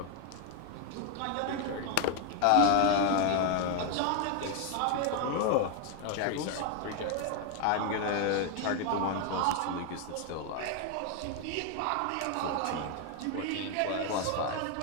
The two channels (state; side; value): different; both; correlation 0.01